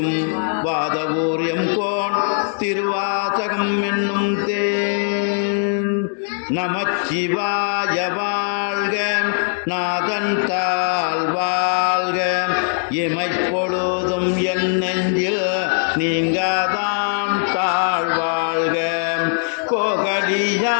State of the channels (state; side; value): silent; right; digital silence